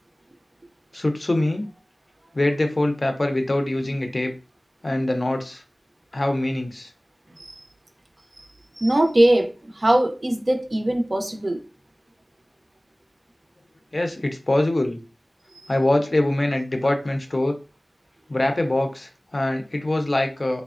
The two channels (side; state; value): both; normal; correlation 0.98